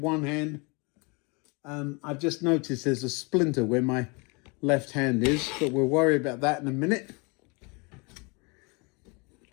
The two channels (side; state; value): right; quieter; 30.0 dB